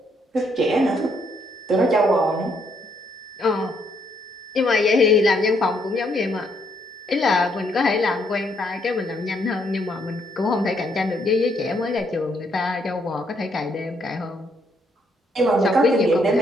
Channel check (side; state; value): both; normal; correlation 0.72